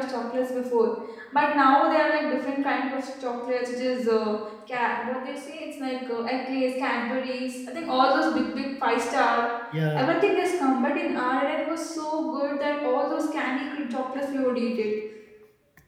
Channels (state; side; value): identical; both; correlation 1.00